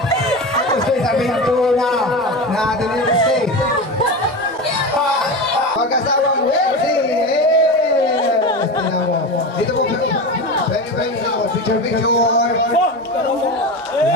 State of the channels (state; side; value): normal; both; correlation 0.24